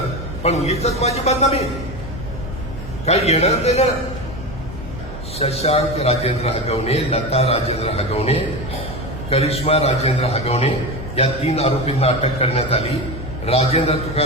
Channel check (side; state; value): both; normal; correlation 0.22